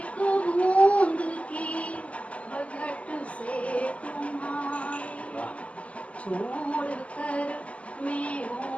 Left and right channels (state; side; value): late; right; 0.063 ms